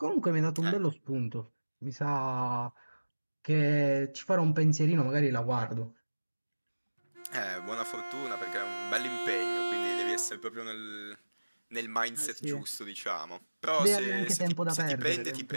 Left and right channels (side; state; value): both; inverted; correlation -1.00